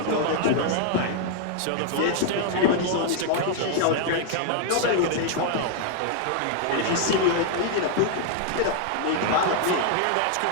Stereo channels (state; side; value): different; both; correlation 0.00